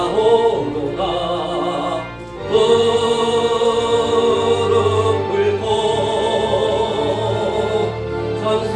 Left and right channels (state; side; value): noise; left; rumble, 30 dB below the sound